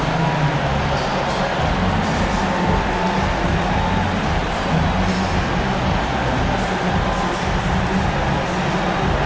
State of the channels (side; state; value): both; identical; correlation 1.00